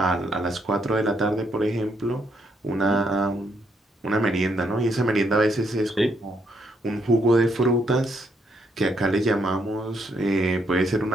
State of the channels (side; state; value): both; normal; correlation 0.74